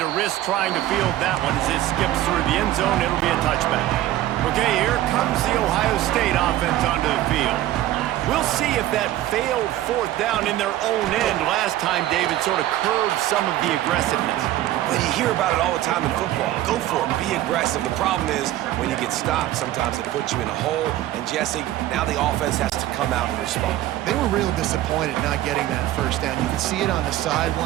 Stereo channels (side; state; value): left; quieter; 14.3 dB